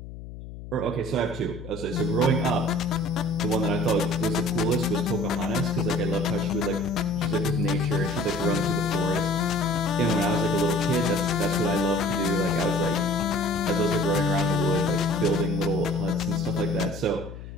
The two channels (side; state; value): left; noise; hum, 13 dB below the sound